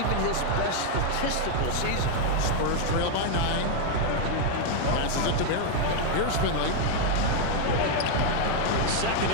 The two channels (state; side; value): different; both; correlation 0.00